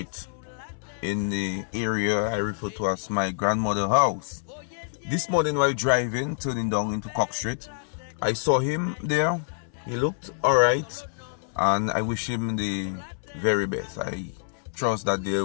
in the area I refer to as my grandmother's house. This morning while driving, turning down into Cock Street, I saw him there. He looked alright, and I wish him the very best. I trust that there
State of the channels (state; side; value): silent; right; 60 dB below the other